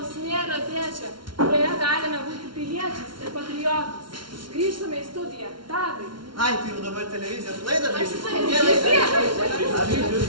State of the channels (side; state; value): left; late; 0.73 ms